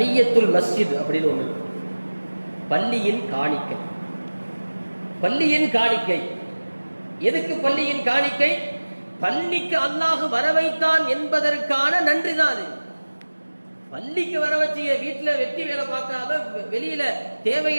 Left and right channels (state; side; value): inverted; both; correlation -1.00